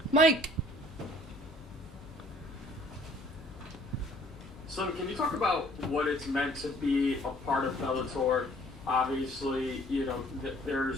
Mike! So can you talk about what it's meant to be a part of Bellator? Obviously,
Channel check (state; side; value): normal; both; correlation 0.57